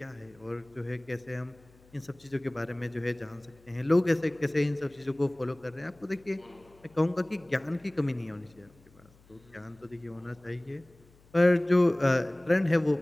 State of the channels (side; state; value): left; noise; hum, 28 dB below the sound